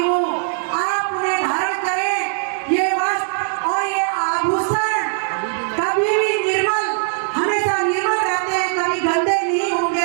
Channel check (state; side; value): silent; left; digital silence